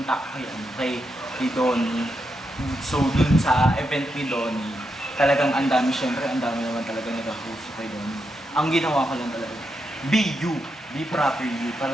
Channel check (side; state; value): both; normal; correlation 0.84